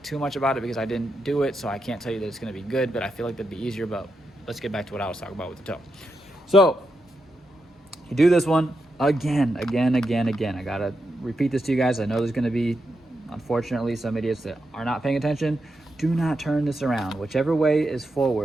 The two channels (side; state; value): both; normal; correlation 0.85